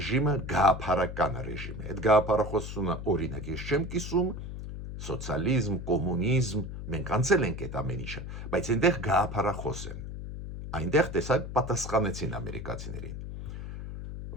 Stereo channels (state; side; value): noise; left; hum, 8 dB below the sound